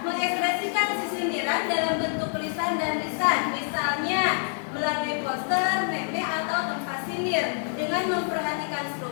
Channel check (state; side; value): silent; right; 60 dB below the other